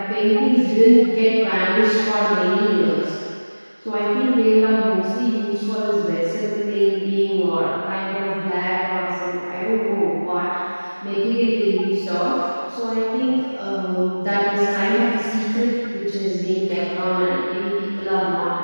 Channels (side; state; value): both; inverted; correlation -1.00